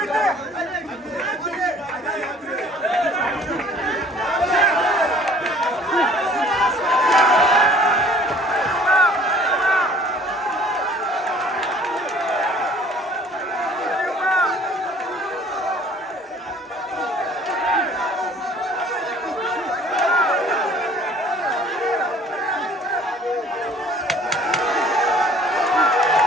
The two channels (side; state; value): both; normal; correlation 0.52